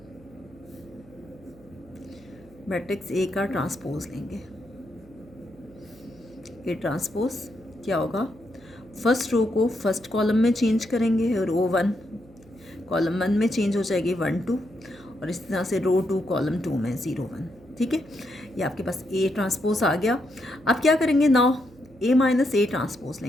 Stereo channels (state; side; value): noise; right; hum, 25 dB below the sound